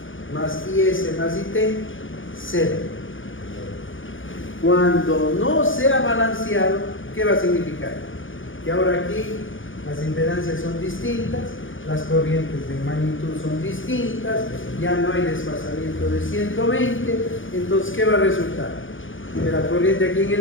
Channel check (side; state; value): right; late; 0.57 ms